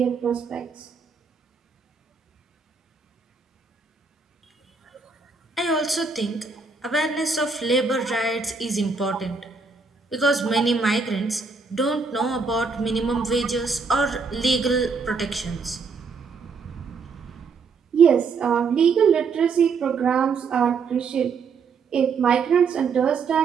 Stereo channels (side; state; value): left; quieter; 4.9 dB